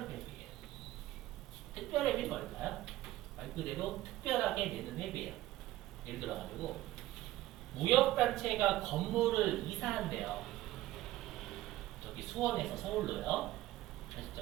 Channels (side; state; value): left; quieter; 15.8 dB